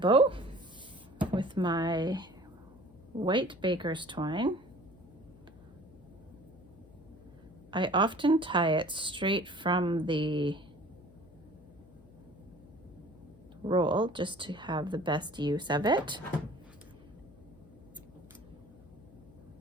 with my white baker's twine. I often tie it straight from the roll just to have the best use of it.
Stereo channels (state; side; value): noise; left; hum, 23 dB below the sound